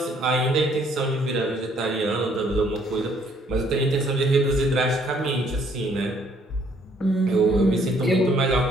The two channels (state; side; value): normal; both; correlation 0.65